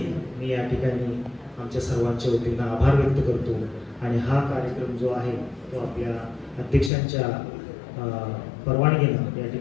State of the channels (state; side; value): drops out; right; at 6.9 s